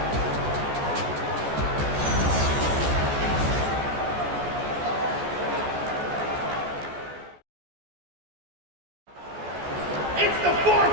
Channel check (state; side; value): late; left; 14 ms